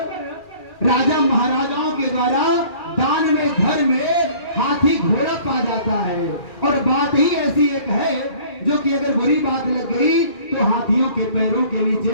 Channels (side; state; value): right; late; 2.4 ms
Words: राजा महाराजाओं के द्वारा दान में घर में हाथी घोड़ा पा जाता है, और बात ही ऐसी एक है जो कि अगर बुरी बात लग गई तो हाथियों के पैरों के